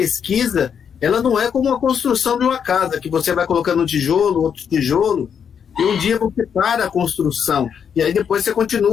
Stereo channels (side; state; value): right; quieter; 7.5 dB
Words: ela não é como a construção de uma casa, que você vai colocando um tijolo, outro tijolo, e um dia você para a construção, e aí depois você